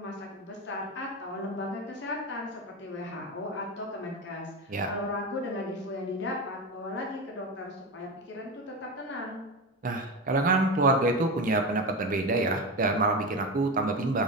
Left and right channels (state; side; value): normal; both; correlation 0.21